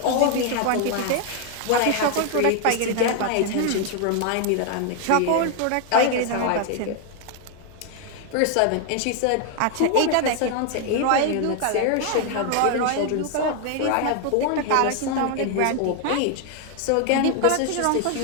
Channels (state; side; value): different; both; correlation 0.00